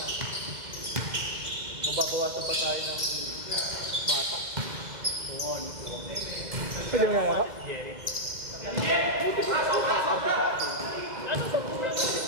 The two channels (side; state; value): left; late; 2.0 ms